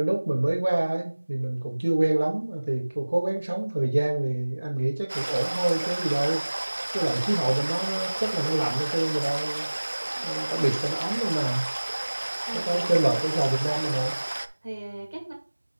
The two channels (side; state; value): both; inverted; correlation -1.00